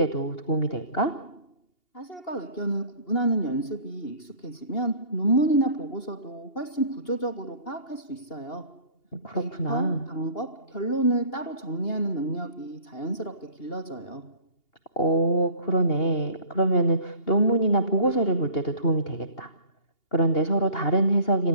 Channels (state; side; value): late; right; 2.8 ms